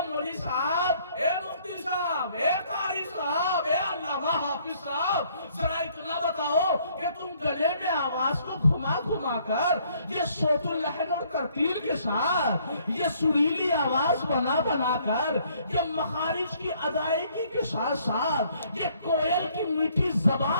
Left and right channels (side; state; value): both; inverted; correlation -0.64